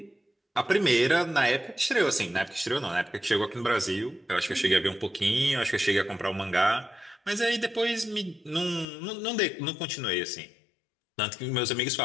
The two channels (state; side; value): drops out; right; at 8.8 s